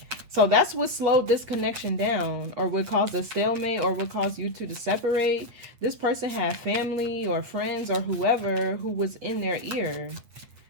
so that's what slowed this connection down, or what caused a stalemate, or what caused you two to separate. This person had family or friends or whoever who was in their ear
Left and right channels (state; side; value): late; left; 8.6 ms